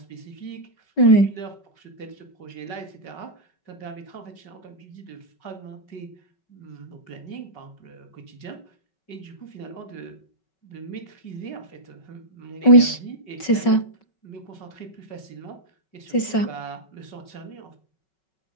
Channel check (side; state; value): right; late; 5.3 ms